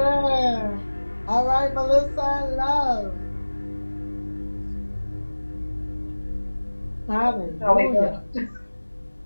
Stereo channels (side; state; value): both; inverted; correlation -1.00